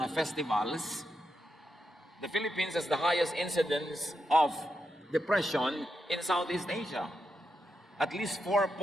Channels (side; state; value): both; normal; correlation 0.85